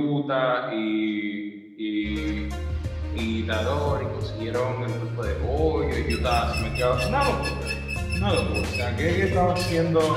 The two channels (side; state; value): both; identical; correlation 1.00